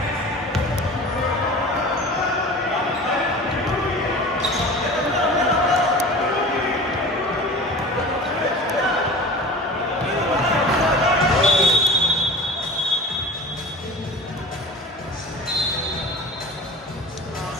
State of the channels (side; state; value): both; normal; correlation 0.38